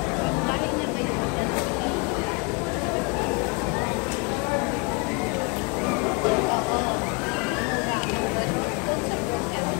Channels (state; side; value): quieter; right; 31.1 dB